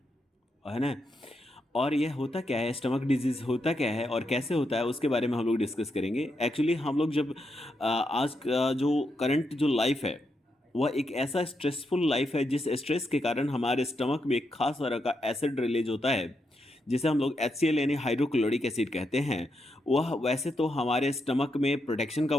है ना? और यह होता क्या है, स्टमक डिजीज़ होता क्या है और कैसे होता है, उसके बारे में हम लोग डिस्कस करेंगे। एक्चुअली हम लोग जब आज का जो करंट जो लाइफ है वह एक ऐसा स्ट्रेसफुल लाइफ है जिस स्ट्रेस के कारण हमारे स्टमक में एक खास तरह का एसिड रिलीज होता है जिसे हम लोग HCl यानी हाइड्रोक्लोरिक एसिड कहते हैं। वह वैसे तो हमारे स्टमक में प्रोटेक्शन का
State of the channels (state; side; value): normal; both; correlation 0.82